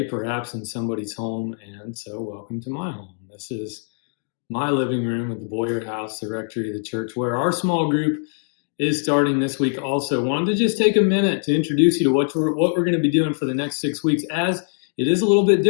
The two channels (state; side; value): silent; right; digital silence